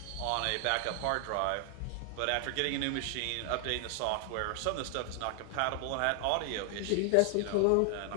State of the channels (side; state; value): both; different; correlation 0.00